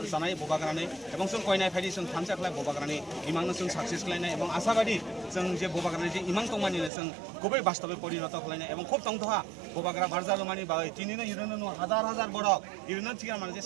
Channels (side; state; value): left; drops out; at 6.9 s